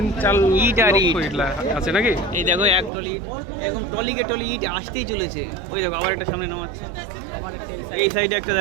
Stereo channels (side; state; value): left; drops out; at 2.9 s